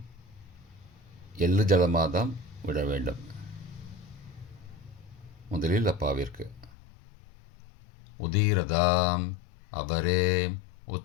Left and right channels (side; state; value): right; drops out; at 6.7 s